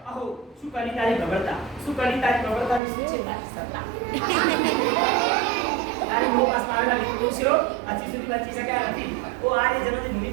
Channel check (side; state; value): left; drops out; at 2.8 s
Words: અહો શું કરી તારી પ્રબળતા, શું કરી તારી પ્રબળતાની શું છે તારી સત્તા. તારી બહુ પાસ આવેલા વિદ્યાર્થીઓ હજી સુધી બચી શક્યા નથી. ઓ આર્ય જનની ભૂમિ